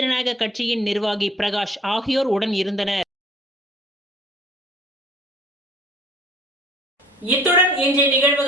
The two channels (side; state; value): both; normal; correlation 0.54